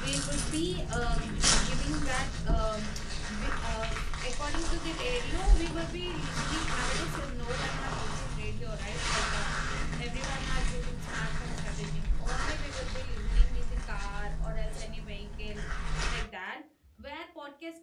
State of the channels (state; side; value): identical; both; correlation 1.00